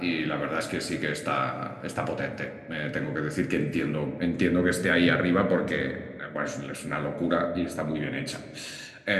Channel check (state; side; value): identical; both; correlation 1.00